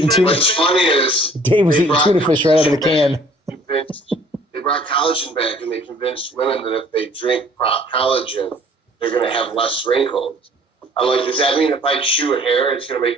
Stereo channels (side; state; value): both; normal; correlation 0.55